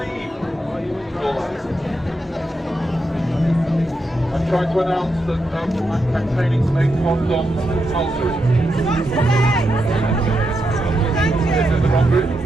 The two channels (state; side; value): normal; both; correlation 0.84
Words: I'm trying to announce that I'm campaigning to make condoms compulsory. This is the wrong group.